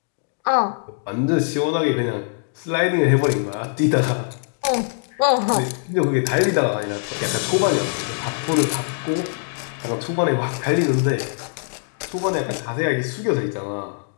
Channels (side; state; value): right; silent; digital silence